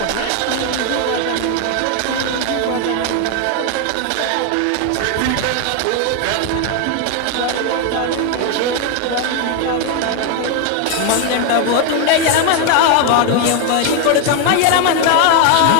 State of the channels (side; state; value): both; different; correlation 0.01